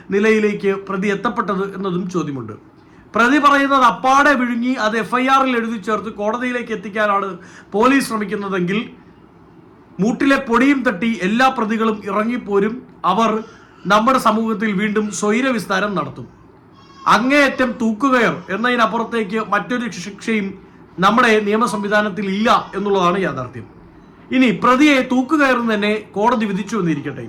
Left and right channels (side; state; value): both; identical; correlation 1.00